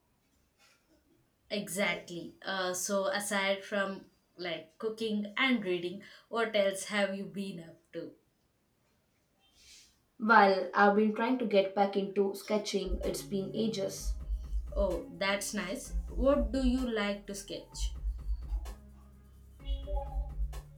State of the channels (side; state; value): both; identical; correlation 1.00